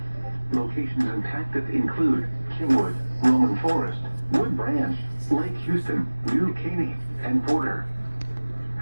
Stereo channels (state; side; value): inverted; both; correlation -1.00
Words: Locations impacted include Kingwood, Roman Forest, Wood Branch, Lake Houston, New Caney, and Porter.